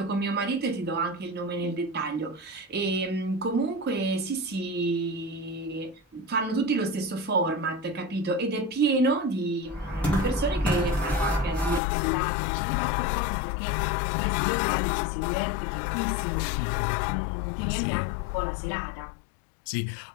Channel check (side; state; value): right; drops out; at 11.8 s